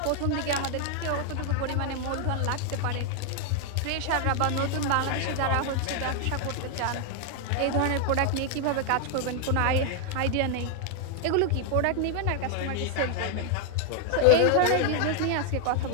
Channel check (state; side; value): different; both; correlation 0.00